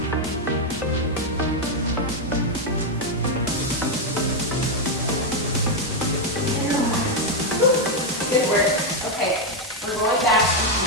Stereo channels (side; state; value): both; normal; correlation 0.02